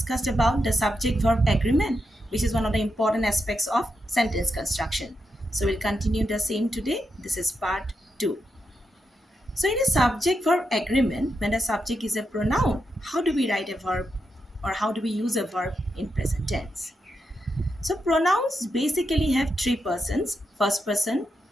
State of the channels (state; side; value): normal; both; correlation 0.85